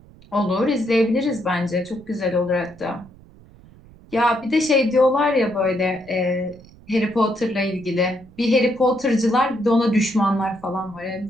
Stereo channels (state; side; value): noise; right; rumble, 23 dB below the sound